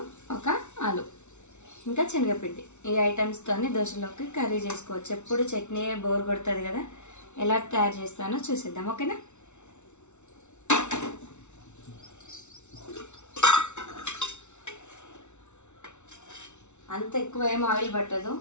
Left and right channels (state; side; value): late; right; 0.82 ms